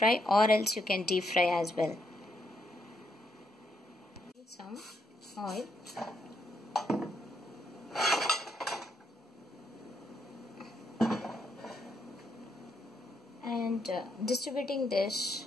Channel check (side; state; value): both; normal; correlation 0.76